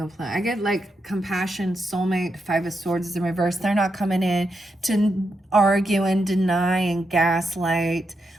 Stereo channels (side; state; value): both; normal; correlation 0.84